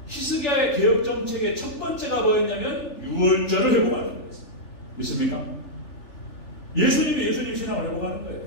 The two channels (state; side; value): late; right; 3.4 ms